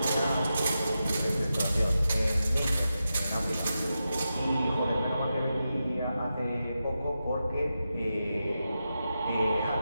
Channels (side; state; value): both; inverted; correlation -0.89